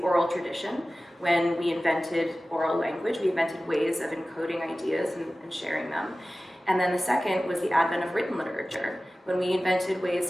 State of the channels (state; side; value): normal; both; correlation 0.96